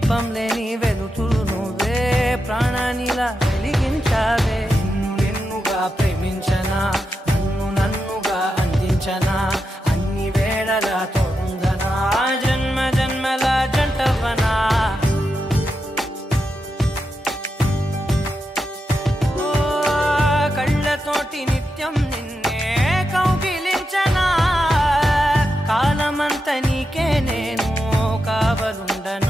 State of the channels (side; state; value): both; normal; correlation 0.87